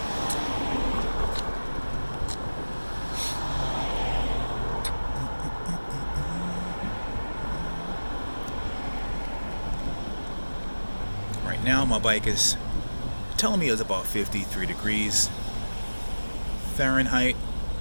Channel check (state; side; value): inverted; both; correlation -1.00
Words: now my bike is telling me it's about 53 degrees Fahrenheit,